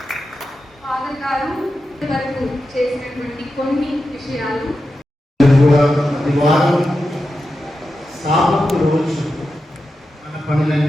ఫాదర్ గారు వరకు చేసినటువంటి కొన్ని విషయాలు వారం సాబతు రోజు మన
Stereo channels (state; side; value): normal; both; correlation 0.90